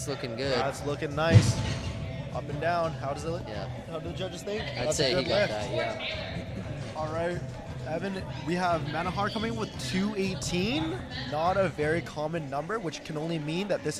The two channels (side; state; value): both; identical; correlation 1.00